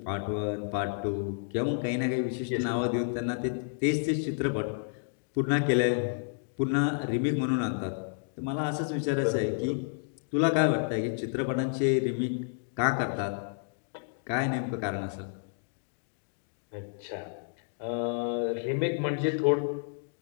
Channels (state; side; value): silent; right; digital silence